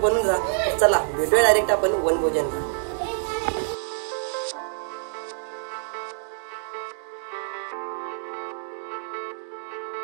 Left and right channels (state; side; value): silent; left; 61 dB below the other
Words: राहा। तर चला भेटूया डायरेक्ट आपण वनभोजनला।